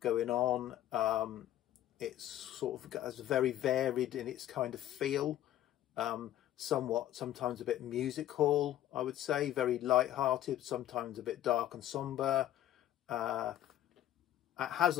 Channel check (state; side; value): quieter; right; 12.6 dB